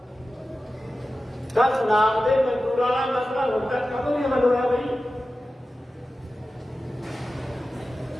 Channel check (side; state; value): both; normal; correlation 0.94